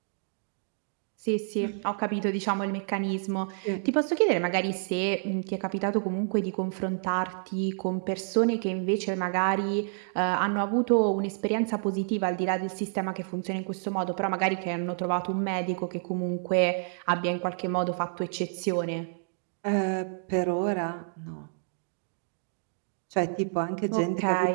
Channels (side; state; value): left; silent; digital silence